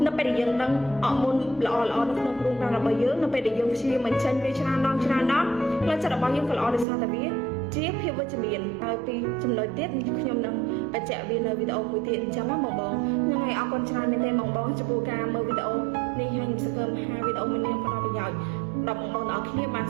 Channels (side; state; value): left; drops out; at 6.9 s